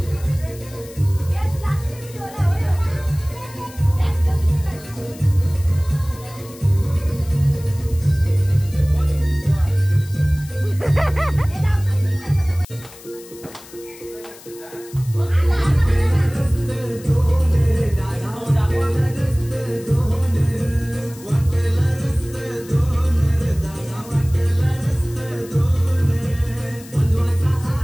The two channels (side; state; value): left; noise; hiss, 20 dB below the sound